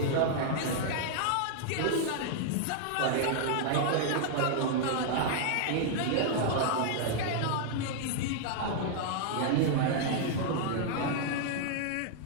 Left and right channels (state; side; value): different; both; correlation -0.01